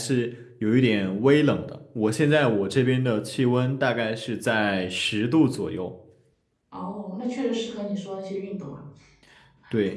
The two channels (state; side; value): identical; both; correlation 1.00